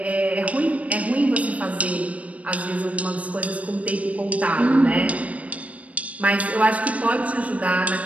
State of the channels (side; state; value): left; late; 0.066 ms